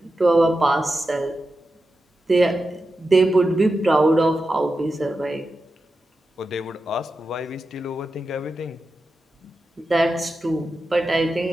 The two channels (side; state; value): both; normal; correlation 0.90